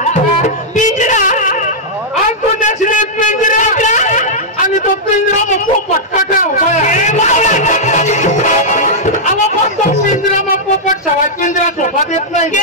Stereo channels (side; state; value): both; normal; correlation -0.08